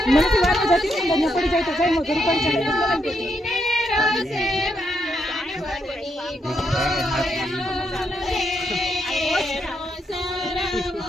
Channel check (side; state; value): both; normal; correlation 0.79